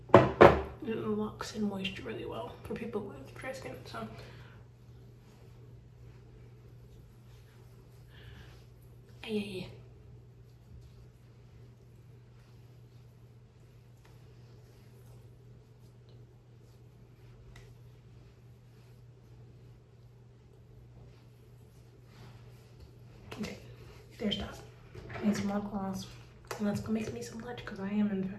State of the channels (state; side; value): identical; both; correlation 1.00